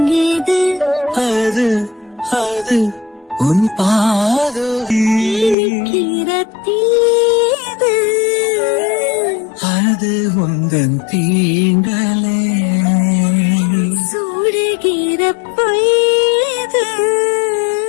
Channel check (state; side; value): drops out; right; at 5.6 s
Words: ஏது அது அது உன் பாதோது அது உந்தன் தீண்டலே சூடுகிற பொய்து.